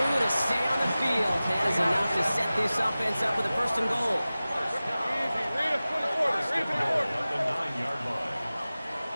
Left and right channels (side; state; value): both; inverted; correlation -0.97